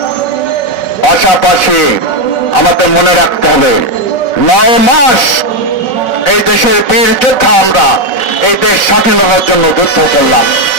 পাশাপাশি আমাদের মনে রাখতে হবে 9 মাস এই দেশের বীর যোদ্ধা আমরা এই দেশ স্বাধীনতার জন্য যুদ্ধ করলাম।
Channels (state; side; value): late; right; 5.4 ms